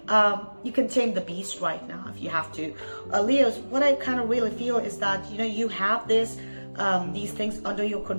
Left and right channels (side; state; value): both; inverted; correlation -1.00